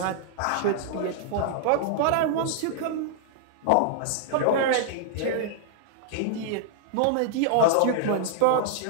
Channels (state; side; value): different; both; correlation -0.01